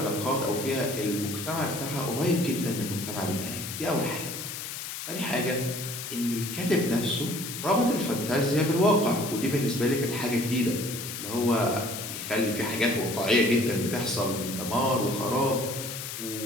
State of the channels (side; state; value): left; noise; hiss, 7 dB below the sound